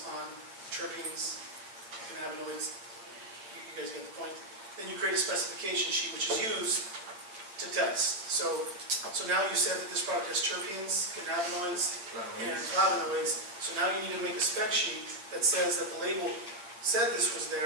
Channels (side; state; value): left; late; 8.8 ms